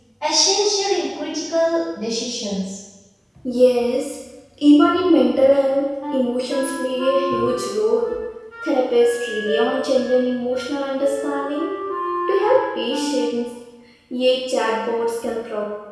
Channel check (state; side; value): identical; both; correlation 1.00